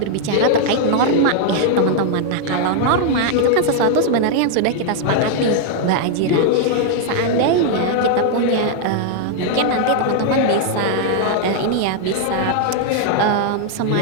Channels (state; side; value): different; both; correlation 0.00